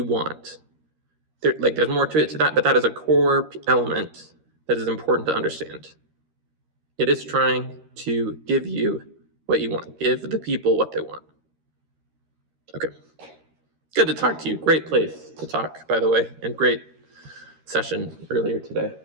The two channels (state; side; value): late; left; 13 ms